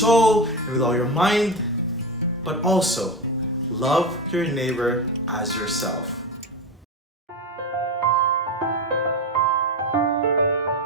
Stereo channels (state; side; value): normal; both; correlation 0.19